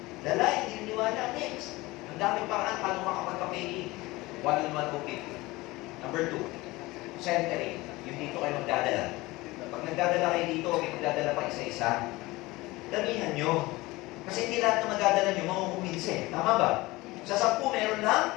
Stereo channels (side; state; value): right; quieter; 20.8 dB